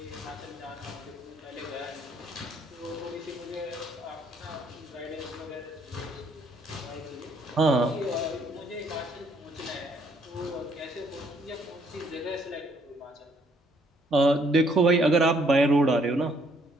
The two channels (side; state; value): both; normal; correlation 0.66